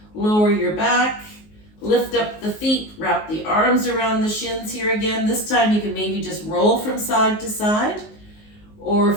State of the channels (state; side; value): late; right; 19 ms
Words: lower your back. Lift up the feet, wrap the arms around the shins here again. This time you can maybe just roll from side to side. Or